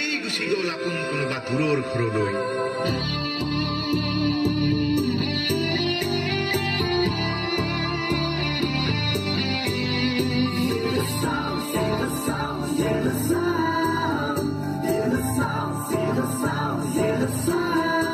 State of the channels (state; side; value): identical; both; correlation 1.00